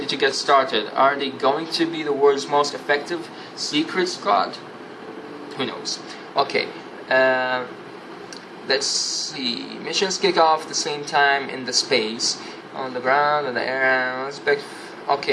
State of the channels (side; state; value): both; identical; correlation 1.00